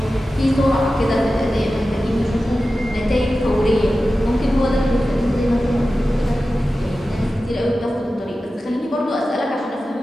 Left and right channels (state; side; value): normal; both; correlation 0.94